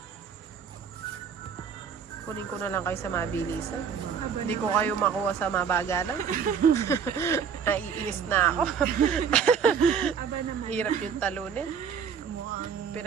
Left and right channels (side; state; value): left; quieter; 6.9 dB